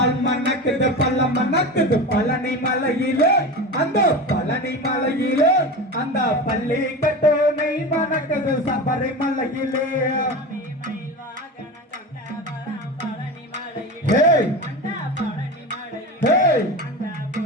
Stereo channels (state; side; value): normal; both; correlation 0.27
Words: மணக்குது பழம் மணக்குது பழனி மலையிலே அந்த பழனி மலையிலே அந்த பள்ளி கட்டோனை மணக்குது சபரிமலையிலே